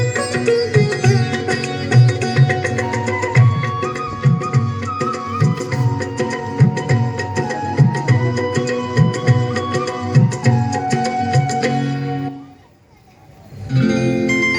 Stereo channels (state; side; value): identical; both; correlation 1.00